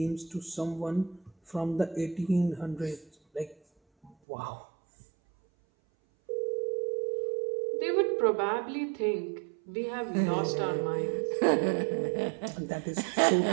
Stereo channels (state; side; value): drops out; left; at 4.2 s